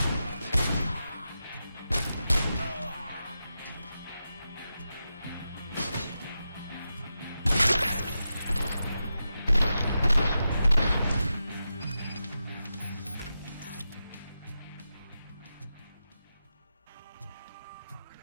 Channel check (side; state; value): both; inverted; correlation -0.90